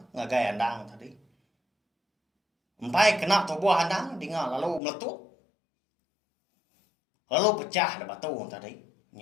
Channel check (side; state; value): right; drops out; at 4.8 s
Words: ngagai andang tadi empai kena tubuh andang dengar lalu meletup lalu pecah dah batu tadi